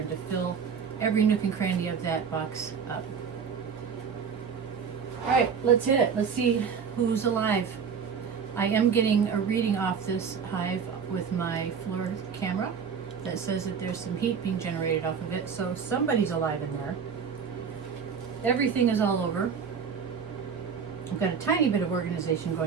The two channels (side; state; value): left; quieter; 6.5 dB